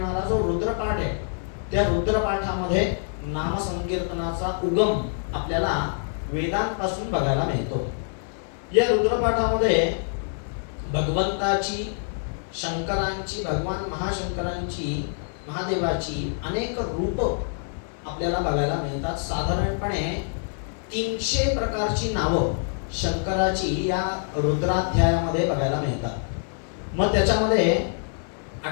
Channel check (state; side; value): silent; right; 61 dB below the other